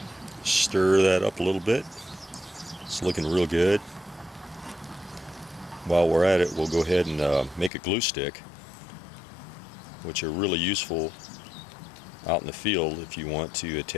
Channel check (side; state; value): right; drops out; at 7.7 s